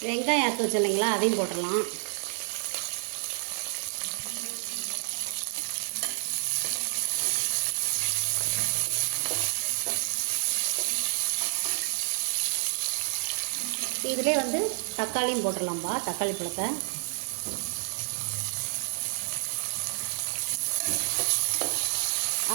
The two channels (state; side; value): silent; left; 58 dB below the other